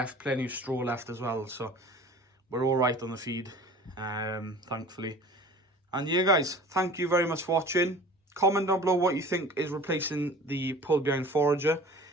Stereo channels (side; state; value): both; normal; correlation 0.42